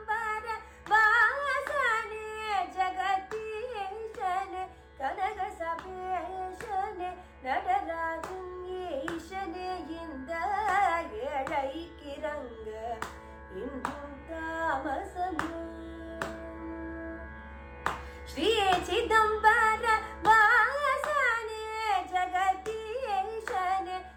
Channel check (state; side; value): identical; both; correlation 1.00